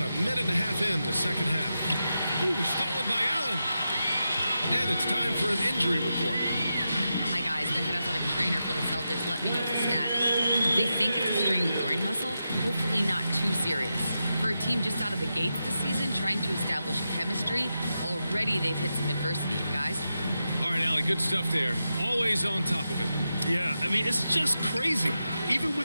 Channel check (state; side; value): inverted; both; correlation -0.89